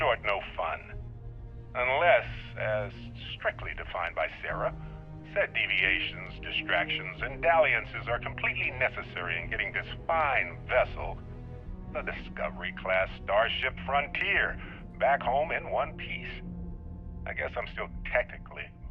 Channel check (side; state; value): both; identical; correlation 1.00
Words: no fun. Unless, as strictly defined by Sarah, said deviations, distractions, and dalliances are completely necessary in getting this fine vessel, the Discovery-class Starship Frontier, back home in one piece. I guess I'm still technically